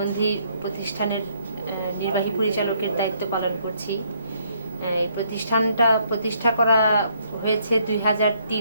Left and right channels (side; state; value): both; inverted; correlation -0.69